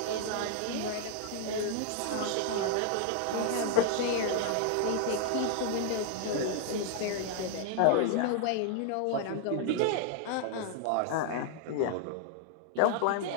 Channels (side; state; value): both; different; correlation 0.00